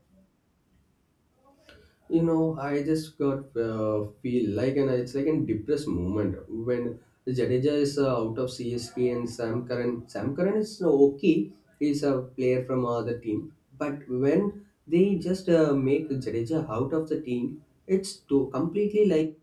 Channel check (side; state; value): both; identical; correlation 1.00